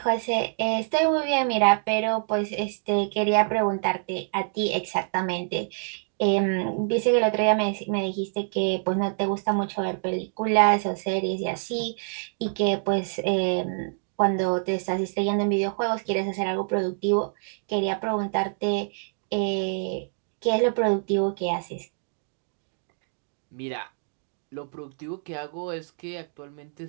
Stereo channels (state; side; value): silent; left; digital silence